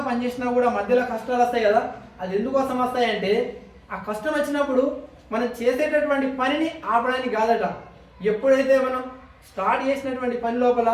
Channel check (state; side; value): identical; both; correlation 1.00